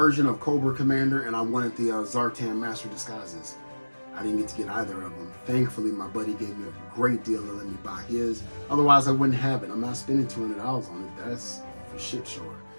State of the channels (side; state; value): both; inverted; correlation -1.00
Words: of Cobra Commander and I wanted the Zartan Master Disguises. I didn't get to get either of them. Thankfully, my buddy gave me a great deal to let me buy his. Otherwise, I wouldn't have it. I'm not spending $200 on it. That's for shit sure.